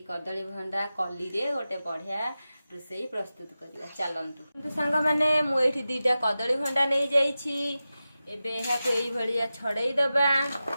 कदली भंडा कली रे गोटे बढ़िया रोसई प्रस्तुत करिबा। चलंतु सांग माने मु एठी दीटा कदली भंडा नहीं जाइछि। एबे एहा को एई भलिया छड़ेई दबा,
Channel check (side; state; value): both; inverted; correlation -0.94